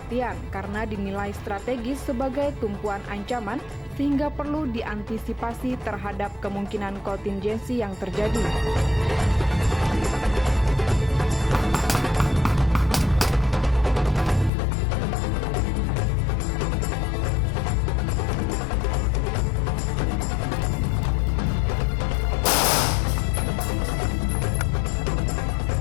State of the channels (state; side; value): drops out; right; at 14.5 s